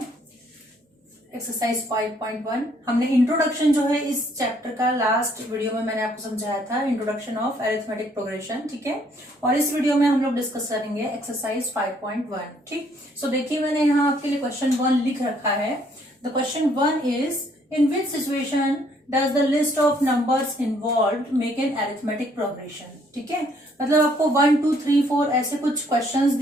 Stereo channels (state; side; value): normal; both; correlation 0.65